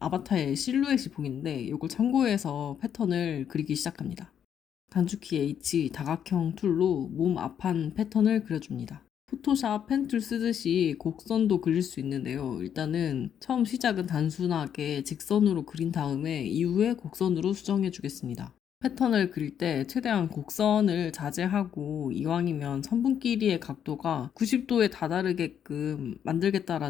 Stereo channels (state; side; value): quieter; right; 8.9 dB